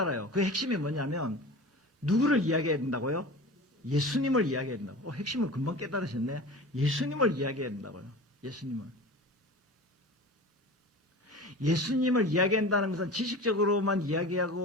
그 핵심이 뭐냐면 누구를 이야기해야 된다고요? 예수님을 이야기해야 된다고. 핵심을 금방 깨달으셨네. 예수님을 이야기해야 된다고요. 예수님을 이야기한다는 것은 지식적으로만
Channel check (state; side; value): normal; both; correlation 0.35